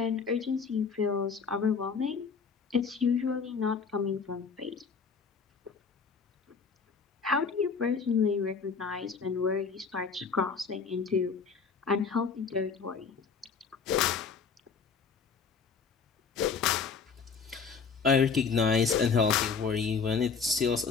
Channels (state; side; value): quieter; right; 5.5 dB